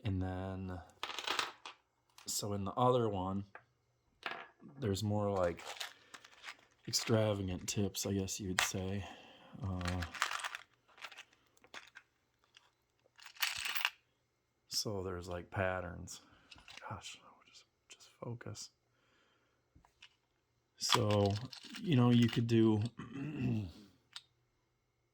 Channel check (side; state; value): both; identical; correlation 1.00